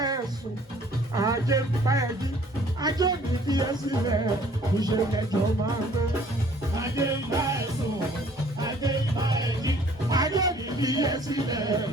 ẹ sùn, ajé ń bá ẹ jí. Ajé mi fi ẹ́ sílẹ̀, ìṣe lájọ máa gbé. Ajé ń bá ẹ sùn, ajé ń bá ẹ jí. Ajé mi fi ẹ́ sílẹ̀,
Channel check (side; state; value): both; normal; correlation 0.56